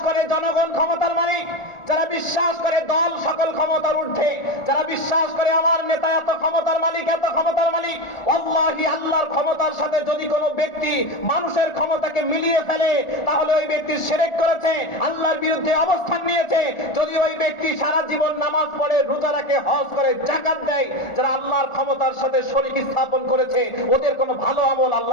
করে জনগণ ক্ষমতার মালিক, যারা বিশ্বাস করে দল সকল ক্ষমতার ঊর্ধ্বে, যারা বিশ্বাস করে আমার নেতা এত ক্ষমতার মালিক, এত ক্ষমতার মালিক, আল্লাহি আল্লাহর ক্ষমতার সাথে যদি কোনো ব্যক্তি মানুষের ক্ষমতাকে মিলিয়ে ফেলে, তাহলে ওই ব্যক্তি শিরক করেছে, আল্লাহর বিরুদ্ধে অবস্থান নিয়েছে। যদি ওই ব্যক্তি সারা জীবন নামাজ পড়ে, রোজা রাখে, হজ করে, যাকাত দেয়, যারা আল্লাহর ক্ষমতার সাথে শরীক স্থাপন করেছে, ওদের কোনো ভালো আমল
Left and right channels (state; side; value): late; right; 1.4 ms